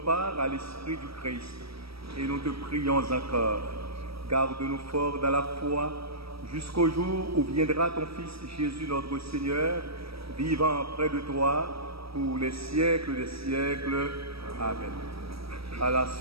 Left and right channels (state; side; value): late; left; 0.76 ms